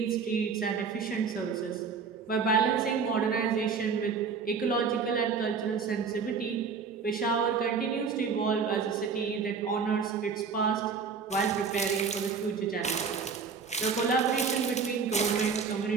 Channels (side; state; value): left; quieter; 5.6 dB